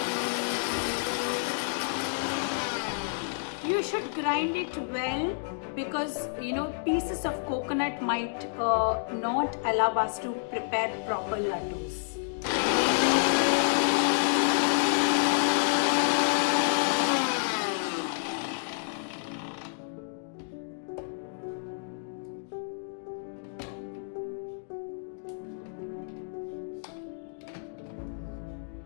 You should grind it well because pieces of coconut might not allow us to prepare proper laddus.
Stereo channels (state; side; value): silent; right; digital silence